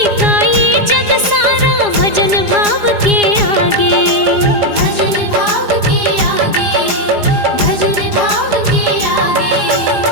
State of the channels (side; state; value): left; late; 4.9 ms